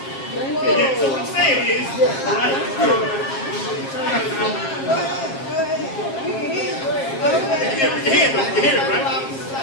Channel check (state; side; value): late; right; 7.4 ms